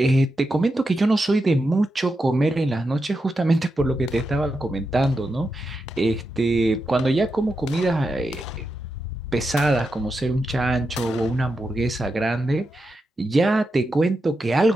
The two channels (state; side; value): normal; both; correlation 0.87